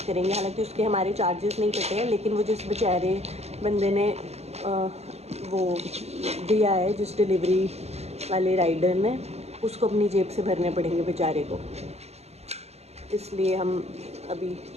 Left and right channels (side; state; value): left; late; 0.31 ms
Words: करेंगे। हालांकि उसके हमारे चार्जेस नहीं कटे हैं, लेकिन वो जिस बेचारे बंदे ने वो दिया है, जिस डिलीवरी वाले राइडर ने, उसको अपनी जेब से भरने पड़ेंगे बेचारे को, इसलिए हम अभी